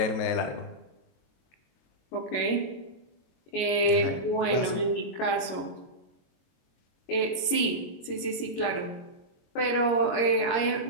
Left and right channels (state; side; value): late; right; 21 ms